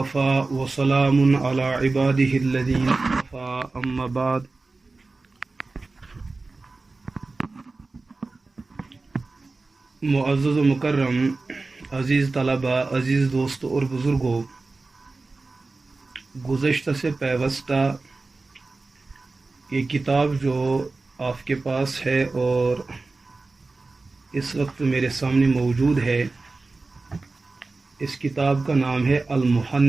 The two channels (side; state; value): left; quieter; 3.6 dB